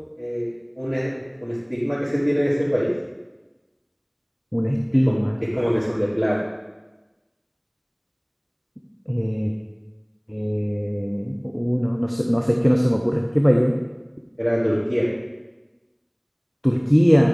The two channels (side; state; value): both; identical; correlation 1.00